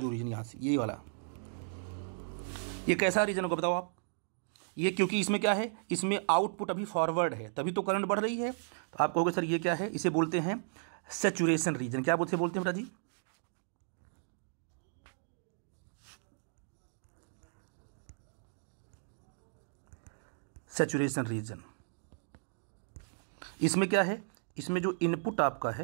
रीजन यहाँ से, ये वाला, ये कैसा रीजन होगा बताओ आप। ये क्योंकि इसमें क्या है, इसमें आउटपुट अभी फॉरवर्ड है, तभी तो करंट बढ़ रही है। तो आप कहोगे सर ये क्या है, इसे बोलते हैं सैचुरेशन रीजन। क्या बोलते हैं बेटा जी, सैचुरेशन रीजन। इसमें क्या है, इसमें जो इनपुट आपका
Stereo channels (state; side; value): silent; left; digital silence